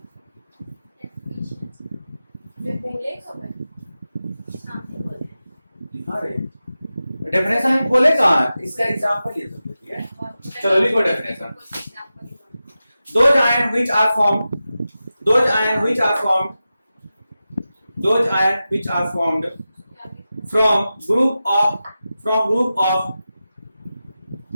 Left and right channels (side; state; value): both; inverted; correlation -0.93